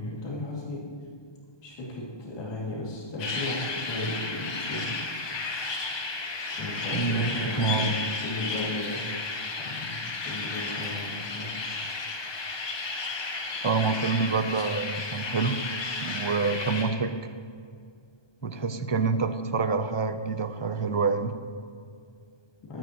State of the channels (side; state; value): right; late; 1.2 ms